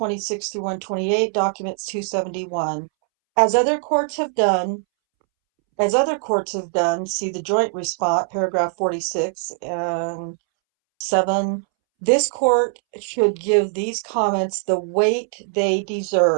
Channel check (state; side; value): silent; left; 65 dB below the other